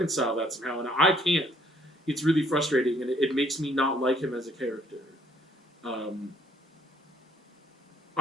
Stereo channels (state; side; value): normal; both; correlation 0.63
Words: that somehow. And I can't. It's really frustrating. And it makes me not like him as a character.